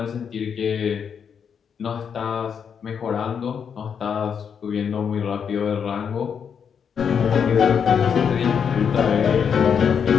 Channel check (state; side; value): quieter; right; 7.1 dB